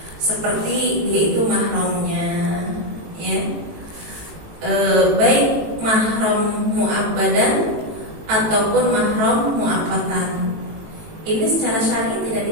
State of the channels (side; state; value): left; late; 18 ms